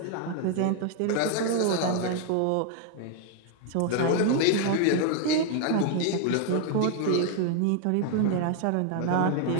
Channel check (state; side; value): different; both; correlation 0.00